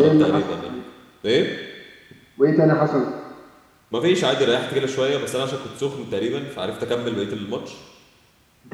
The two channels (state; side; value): identical; both; correlation 1.00